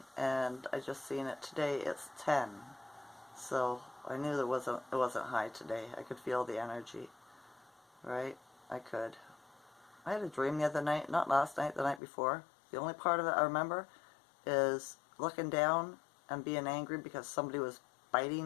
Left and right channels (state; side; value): drops out; right; at 12.0 s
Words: and I just seen it today. It's 10, so I knew it wasn't high today. I could feel the energy, right? I could. I had a dream the other night, not last night, the night before. The only part of it I remember is looking down and being angry because somebody was